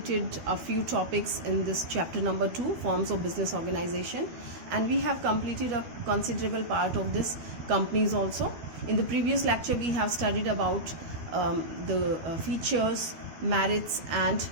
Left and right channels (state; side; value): late; left; 12 ms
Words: a few topics in this chapter number 2, Forms of Business Organization, and we have completed a considerable part of this companies also. In the previous lecture, we have studied about the features, merits, and